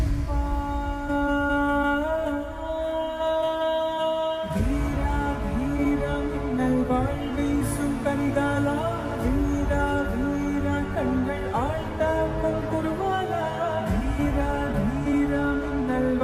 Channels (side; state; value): both; identical; correlation 1.00